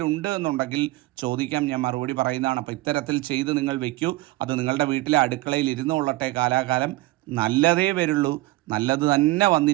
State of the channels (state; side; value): quieter; left; 19.3 dB